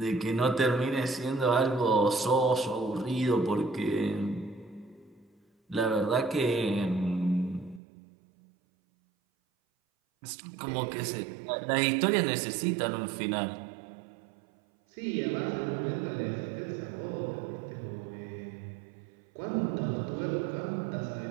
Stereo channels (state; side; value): drops out; left; at 7.8 s